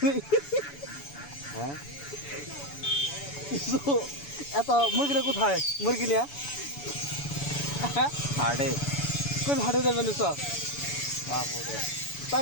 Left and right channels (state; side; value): late; right; 7.0 ms